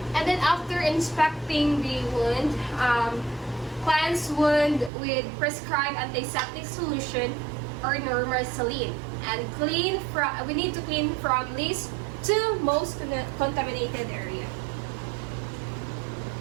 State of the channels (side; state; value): left; drops out; at 4.9 s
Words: And then, after inspecting the wound, cleanse wound with prescribed antiseptic solution or normal saline, and we need to clean from least to most contaminated area.